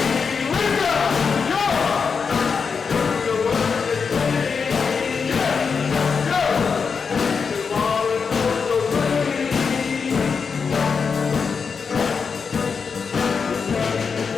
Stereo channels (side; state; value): right; quieter; 5.6 dB